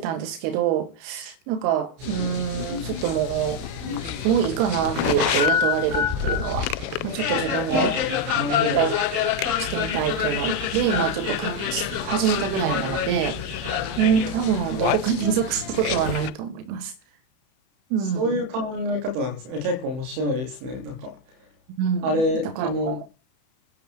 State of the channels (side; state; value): left; late; 31 ms